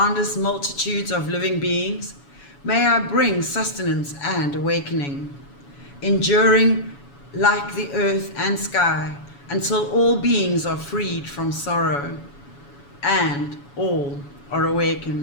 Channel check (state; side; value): late; right; 7.1 ms